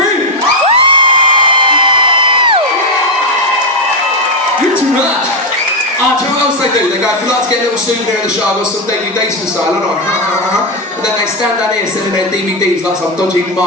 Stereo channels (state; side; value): normal; both; correlation 0.04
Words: You're too much. Ah, do you know what else they do? They go, if you'd like to get a little souvenir in the show, I've got some DVDs for sale. I know, and then they stand down here selling their DVDs like some dodgy